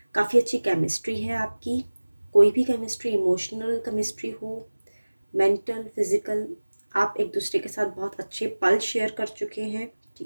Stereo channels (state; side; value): inverted; both; correlation -1.00